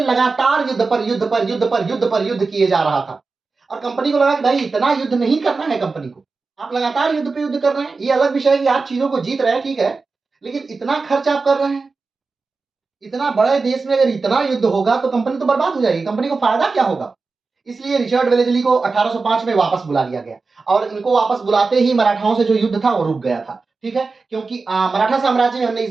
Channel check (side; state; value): left; quieter; 4.2 dB